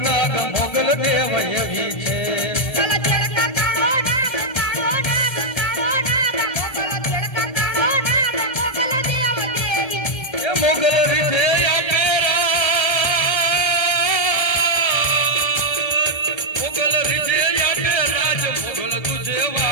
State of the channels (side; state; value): right; late; 1.3 ms